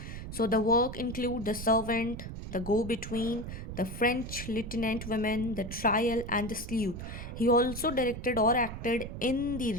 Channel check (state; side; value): noise; right; rumble, 8 dB below the sound